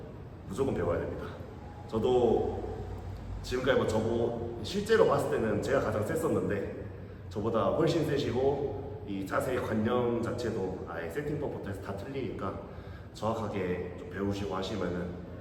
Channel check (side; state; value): both; identical; correlation 1.00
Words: 무조건 배워야 됩니다. 저도 지금까지 저보 실제로 봤을 때는 제가 가장 셌었는데 저보다 훨씬 세시고 이 자세의 관념 자체도 아예 세팅법부터 해서 다 틀리니까 정확하게 좀 배우시고 하시면은